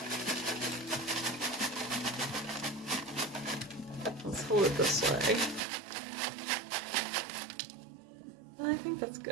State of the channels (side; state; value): left; drops out; at 5.6 s